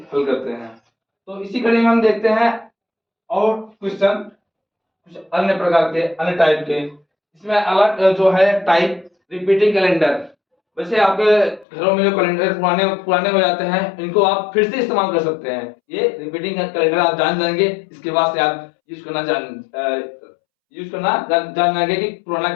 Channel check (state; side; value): drops out; right; at 11.7 s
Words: हल करते हैं। तो इसी कड़ी में हम देखते हैं और क्वेश्चन कुछ अन्य प्रकार के, अन्य टाइप के। इसमें अलग जो है टाइप, रिपीटिंग कैलेंडर। वैसे आपके घरों में जो कैलेंडर पुराने पुराने हो जाते हैं, इनको आप फिर से इस्तेमाल कर सकते हैं। ये रिपीटिंग कैलेंडर आप जान जाएंगे, इसके बाद से आप यूज करना जान जाएंगे कि पुराना